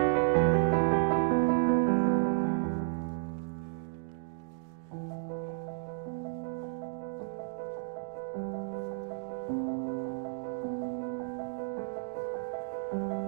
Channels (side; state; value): left; silent; digital silence